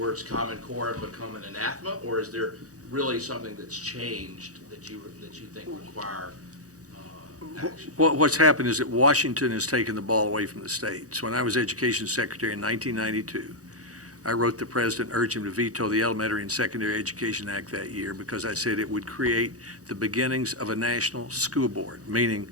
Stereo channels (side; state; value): left; late; 0.66 ms